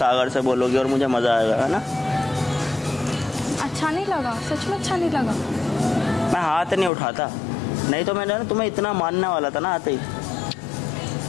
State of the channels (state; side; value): drops out; right; at 6.9 s